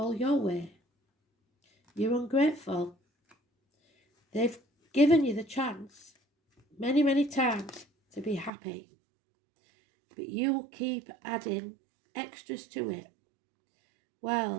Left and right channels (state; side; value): drops out; left; at 8.5 s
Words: your way. You're ungrateful. They've given you the chance many, many times to be happy. But you'll keep adding extras to it.